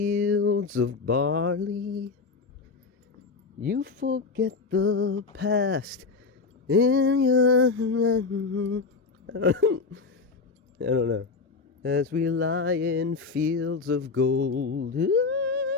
of barley. You forget the past in your... I don't know. As we lie in fields of gold.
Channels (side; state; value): right; quieter; 4.4 dB